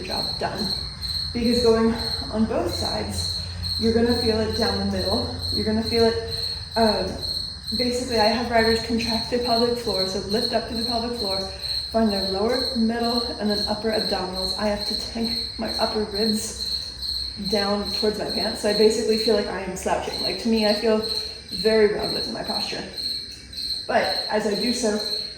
job done. Because going on both sides, you're going to feel it down the middle. You're going to feel it, basically I have riders contract the pelvic floor, so lift up to the pelvic floor, find their lower, middle, and then upper abdominals. I have to tank my upper ribs down towards my pants. So I basically feel like I am slouching. Like, to me, I feel very rounded in my posture. But as I do so,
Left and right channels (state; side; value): identical; both; correlation 1.00